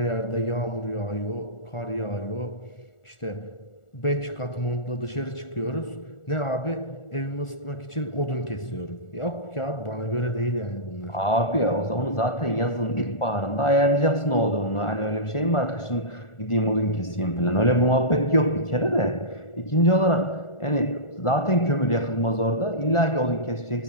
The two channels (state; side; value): late; right; 1.4 ms